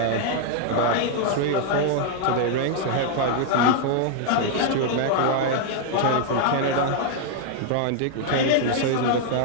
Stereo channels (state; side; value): different; both; correlation 0.00